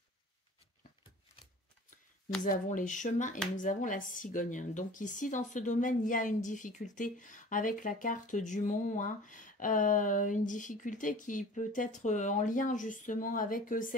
nous avons les chemins et nous avons la cigogne. Donc ici, dans ce domaine, il y a une difficulté avec la carte du mont. Une difficulté qui peut être en lien justement avec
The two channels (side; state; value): both; normal; correlation 0.43